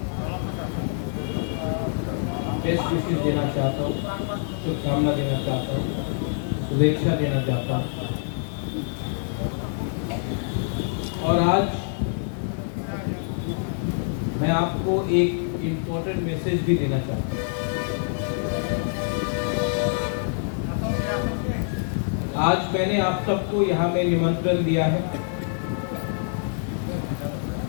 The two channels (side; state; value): right; silent; digital silence